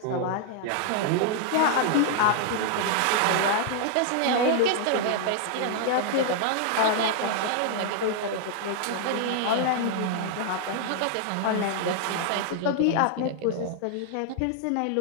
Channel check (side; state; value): both; different; correlation -0.01